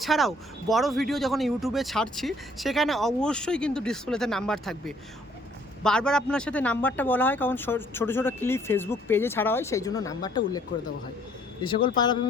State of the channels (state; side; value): normal; both; correlation 0.62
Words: বড় ভিডিও যখন ইউটিউবে ছাড়ছি সেখানে অবশ্যই কিন্তু ডিসপ্লেতে নাম্বার থাকবে। বারবার আপনার সাথে নাম্বারটা বলা হয় কারণ ছোটো ছোটো ক্লিপ ফেসবুক পেজে ছাড়া হয়, সেই জন্য নাম্বারটা উল্লেখ করে দেওয়া হয়। যে সকল পায়রা